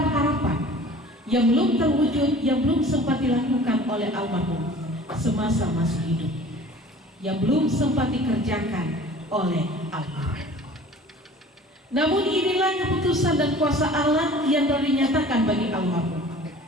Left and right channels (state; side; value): normal; both; correlation 0.45